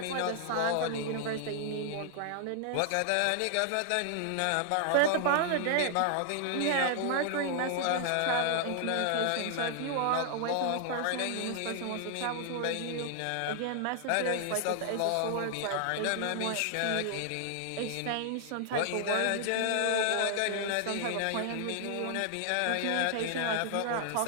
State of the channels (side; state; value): both; different; correlation 0.00